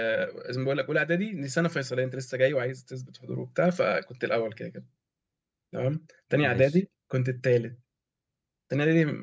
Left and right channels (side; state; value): both; identical; correlation 1.00